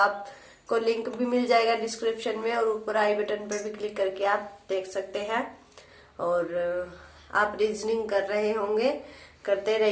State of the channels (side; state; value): both; identical; correlation 1.00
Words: लिंक भी मिल जाएगा डिस्क्रिप्शन में और ऊपर आई बटन पर भी क्लिक करके आप देख सकते हैं। और आप रीजनिंग कर रहे होंगे, करते